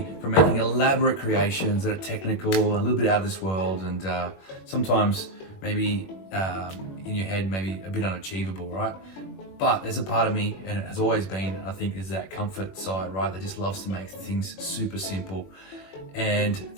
from making elaborate creations that are technical, a little bit out of this world, and sometimes maybe in your head, maybe a bit unachievable, right? But there's a part of me, and it has always been, I think, is that comfort side, right? That just loves to make things super simple and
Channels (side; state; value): right; late; 21 ms